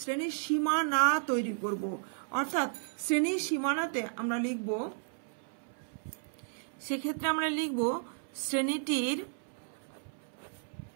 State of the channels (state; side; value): silent; left; 55 dB below the other